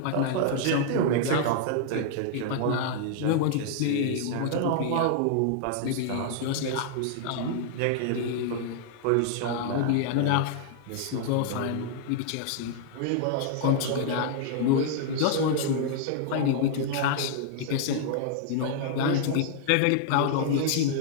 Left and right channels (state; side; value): different; both; correlation 0.00